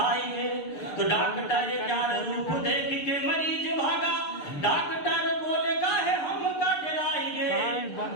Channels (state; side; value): late; right; 6.7 ms